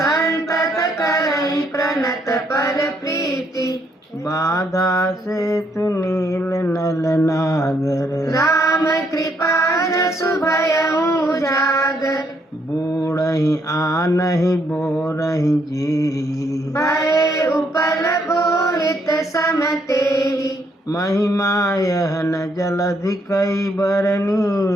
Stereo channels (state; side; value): normal; both; correlation 0.72